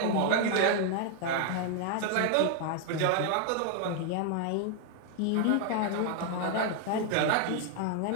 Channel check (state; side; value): different; both; correlation 0.00